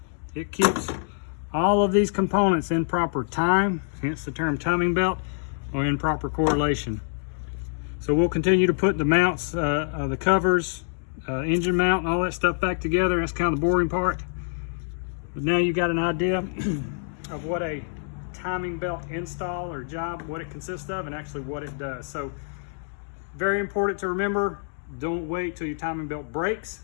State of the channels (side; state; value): right; silent; digital silence